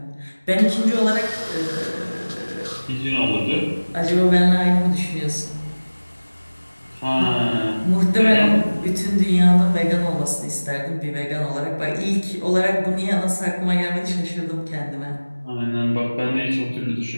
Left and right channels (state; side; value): inverted; both; correlation -1.00